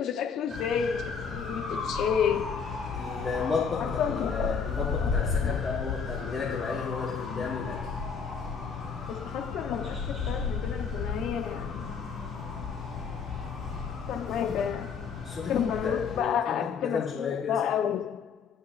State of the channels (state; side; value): quieter; right; 6.2 dB